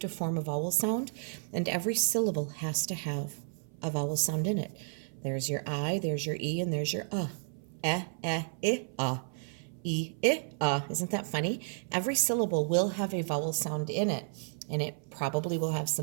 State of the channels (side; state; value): left; silent; 56 dB below the other